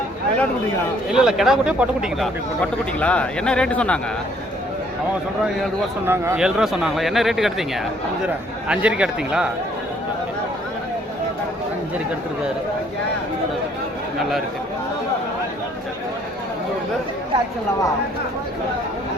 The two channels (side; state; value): both; normal; correlation 0.63